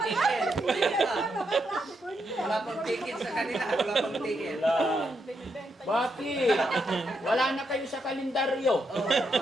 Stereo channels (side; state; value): both; normal; correlation 0.81